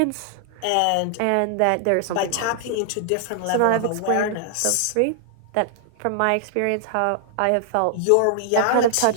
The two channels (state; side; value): different; both; correlation -0.01